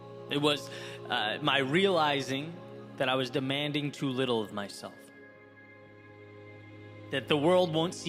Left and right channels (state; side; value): identical; both; correlation 1.00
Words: It was my realizing that I was demanding too little of myself. That the world won't